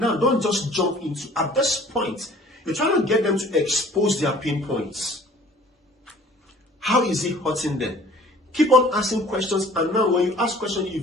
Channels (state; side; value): normal; both; correlation 0.51